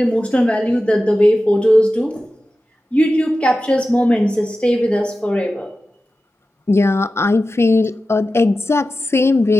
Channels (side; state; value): both; normal; correlation 0.94